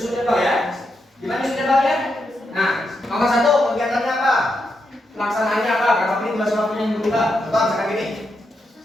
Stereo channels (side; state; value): both; normal; correlation 0.83